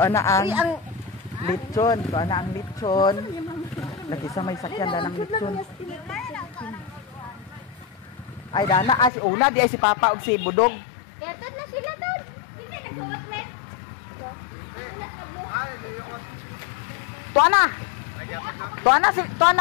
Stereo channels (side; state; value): right; drops out; at 9.1 s